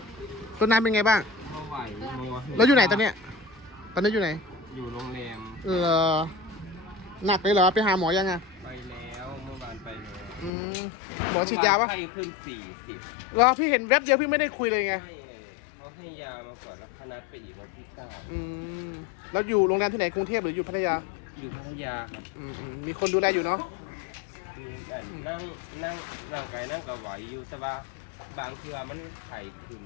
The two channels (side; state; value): right; drops out; at 10.5 s